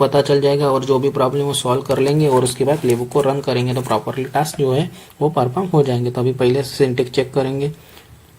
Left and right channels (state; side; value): identical; both; correlation 1.00